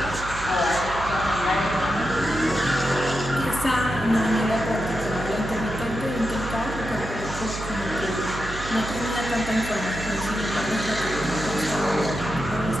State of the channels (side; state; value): right; noise; hum, 9 dB below the sound